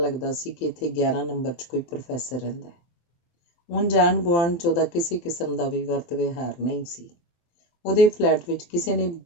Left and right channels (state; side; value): late; right; 23 ms